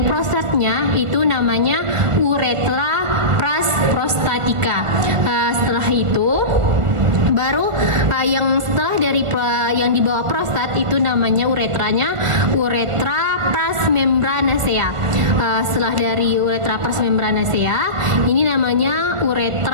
prostatnya itu namanya uretra pras prostatika. Setelah itu baru yang setelah dari yang di bawah prostat itu namanya uretranya uretra pras membranacea. Setelah dari uretra pras membranacea ini namanya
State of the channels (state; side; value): late; left; 1.4 ms